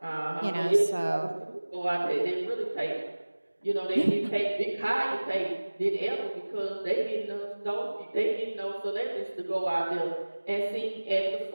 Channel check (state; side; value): inverted; both; correlation -1.00